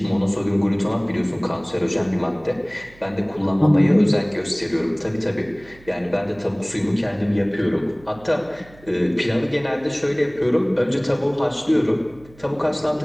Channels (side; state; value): right; noise; hum, 24 dB below the sound